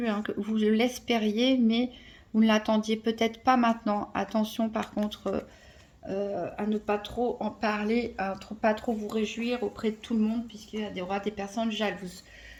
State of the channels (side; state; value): both; identical; correlation 1.00